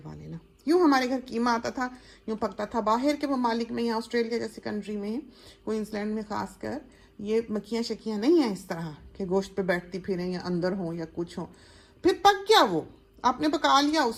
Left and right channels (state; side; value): identical; both; correlation 1.00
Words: लेना। यूँ हमारे घर कीमा आता था, यूँ पकता था। बाहर के ममालिक में, यहाँ ऑस्ट्रेलिया जैसे कंट्री में, क्वींसलैंड में खासकर, ये मक्खियाँ शक्कियाँ नहीं हैं इस तरह के गोश्त पे बैठती फिरें या अंदर हो या कुछ हो। फिर पक गया, वो आपने पका लिया